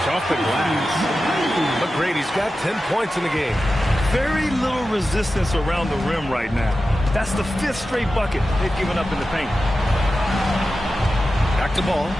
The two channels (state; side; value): normal; both; correlation 0.93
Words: off the glass. McGrady's got 10 points in the game. Very little resistance around the rim right now. That's the 5th straight bucket they've given up in the paint. Back to Ball.